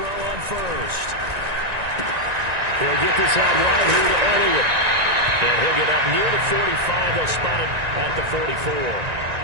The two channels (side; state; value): left; late; 1.9 ms